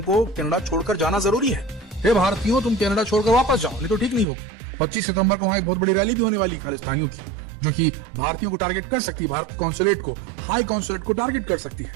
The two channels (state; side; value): drops out; left; at 4.2 s